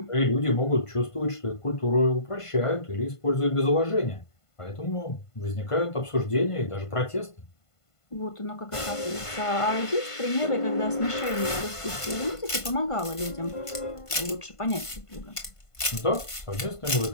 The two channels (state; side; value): late; right; 1.5 ms